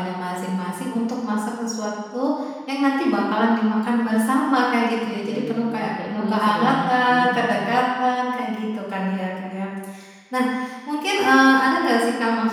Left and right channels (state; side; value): identical; both; correlation 1.00